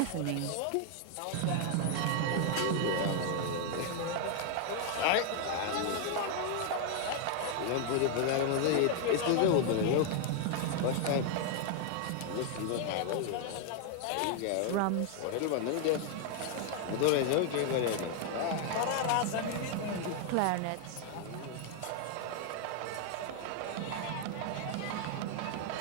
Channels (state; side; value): different; both; correlation 0.00